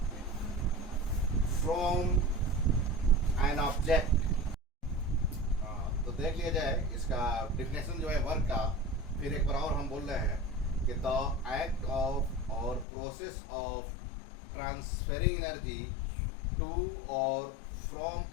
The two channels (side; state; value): right; drops out; at 12.9 s